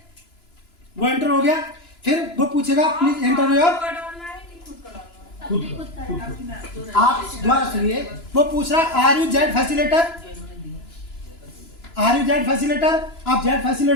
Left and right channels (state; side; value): late; right; 2.9 ms